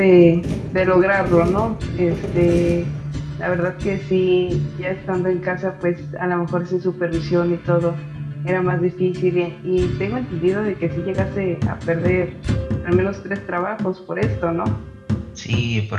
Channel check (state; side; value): identical; both; correlation 1.00